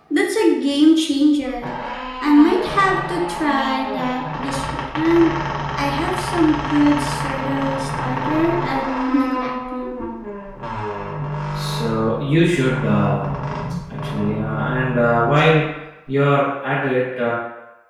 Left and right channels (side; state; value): both; identical; correlation 1.00